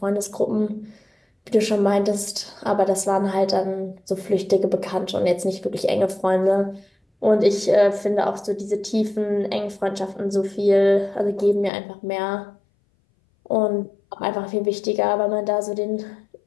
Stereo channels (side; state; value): right; drops out; at 11.7 s